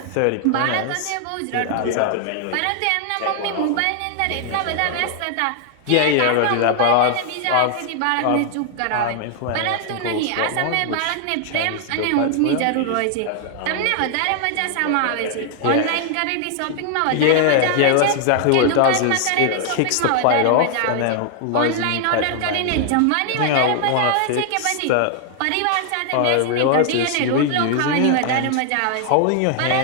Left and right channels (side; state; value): both; different; correlation 0.00